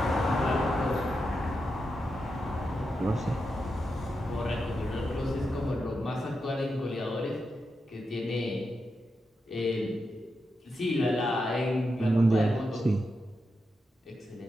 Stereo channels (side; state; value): both; normal; correlation 0.87